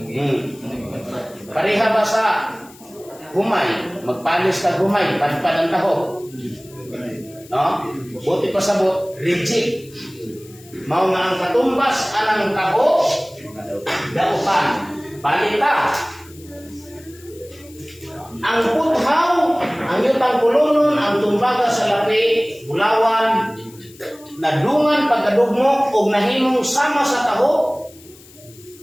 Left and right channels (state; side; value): noise; left; hiss, 23 dB below the sound